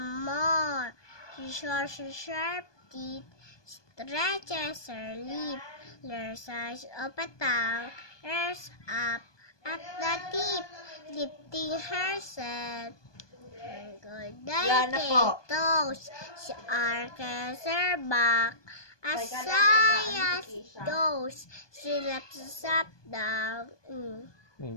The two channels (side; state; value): right; late; 1.2 ms